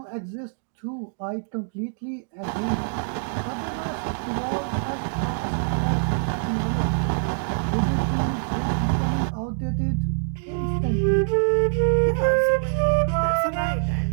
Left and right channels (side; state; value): left; silent; digital silence